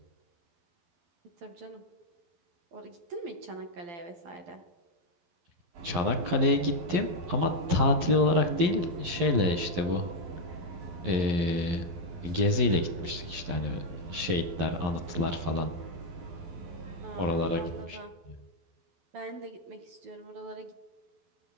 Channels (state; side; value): late; left; 11 ms